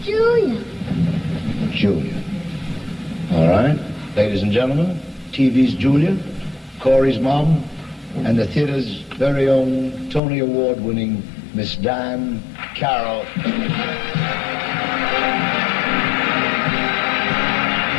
Julia. Julia. All right. Ladies and gentlemen, TV's Julia, Corey's mom, and the theater's very own Tony Award-winning Miss Diane Carol.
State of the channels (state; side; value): drops out; right; at 10.2 s